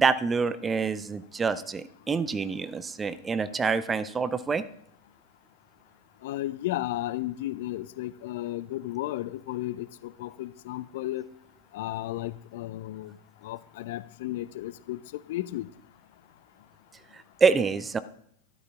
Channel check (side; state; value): both; normal; correlation 0.55